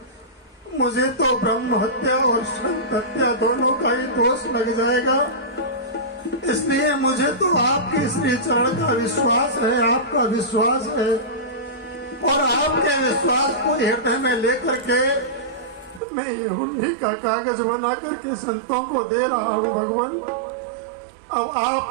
मुझे तो ब्रह्म हत्या और संत हत्या दोनों का ही दोष लग जाएगा। इसलिए मुझे तो आपके श्री चरण का विश्वास है, आपका विश्वास है, और आपके विश्वास को हृदय में लेकर के मैं ये हुंडी का कागज बना करके संतों को दे रहा हूँ। भगवान, अब आप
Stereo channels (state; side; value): drops out; left; at 16.0 s